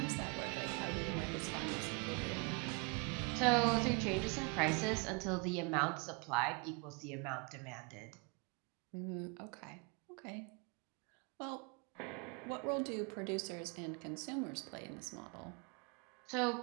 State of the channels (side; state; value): left; quieter; 32.4 dB